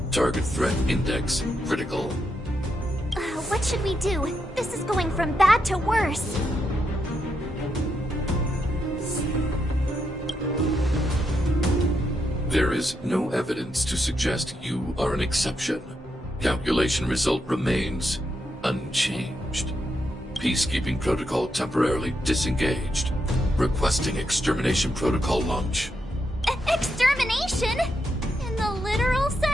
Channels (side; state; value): both; normal; correlation 0.82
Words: Target threat index critical. What should we do? This is going from bad to worse. There is no evidence to suggest you are an exception. Calculation result remains unchanged. Peacekeeping protocol temporarily disengaged. Requesting extermination protocol launch. Extermination? In the literal